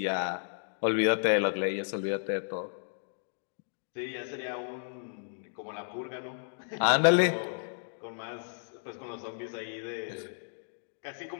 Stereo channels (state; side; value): silent; right; digital silence